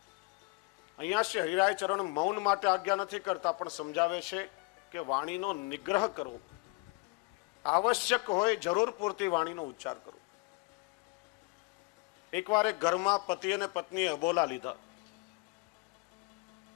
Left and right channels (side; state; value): right; quieter; 27.9 dB